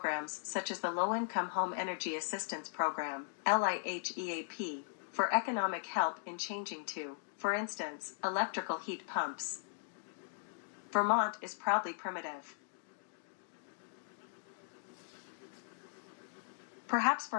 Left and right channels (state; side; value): silent; right; digital silence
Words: such as the Low-Income Home Energy Assistance Program, LIHEAP, for economic help in changing to, for instance, electrical heat pumps. Vermont is proudly primitive. Perhaps